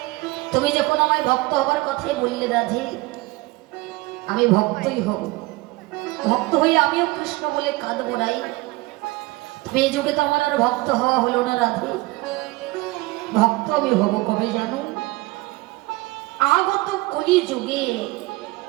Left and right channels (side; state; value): left; quieter; 21.5 dB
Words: তুমি যখন আমায় ভক্ত হবার কথাই বললে রাধে, আমি ভক্তই হব। ভক্ত হয়ে আমিও কৃষ্ণ বলে কাঁদবো নাই। এই যুগে তো আমার আর ভক্ত হওয়া হলো না রাধে। ভক্ত আমি হব কবে জানো? আগত কলি যুগে।